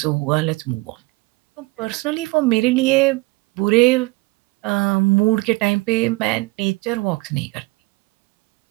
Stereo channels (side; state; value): left; quieter; 23.5 dB